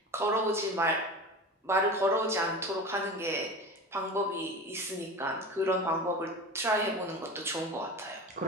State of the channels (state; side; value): normal; both; correlation 0.31